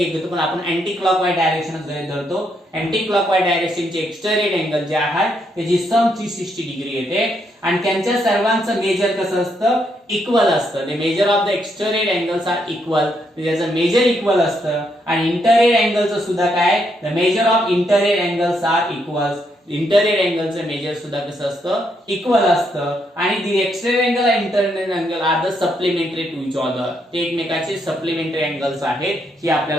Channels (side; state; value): both; normal; correlation 0.76